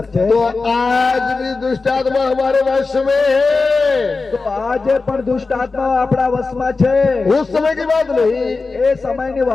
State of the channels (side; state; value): right; quieter; 4.0 dB